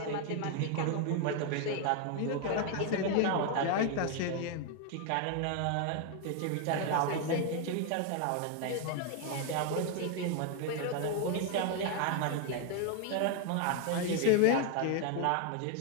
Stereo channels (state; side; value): different; both; correlation 0.00